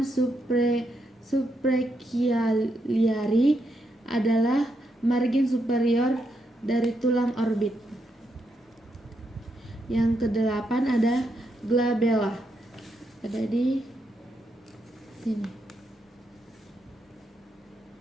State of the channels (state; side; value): normal; both; correlation 0.81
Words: suprachialiari, adalah margin superior dari tulang orbit. Yang kedelapan ada glabella, ada di sini.